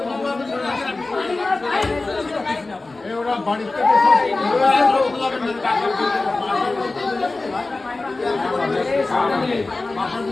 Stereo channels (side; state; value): right; quieter; 3.3 dB